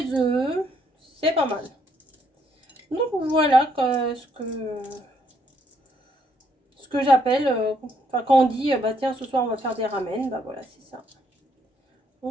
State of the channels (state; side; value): normal; both; correlation 0.71